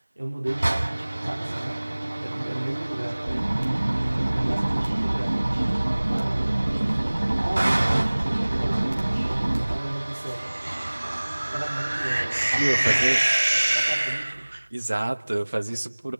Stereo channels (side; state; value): both; inverted; correlation -1.00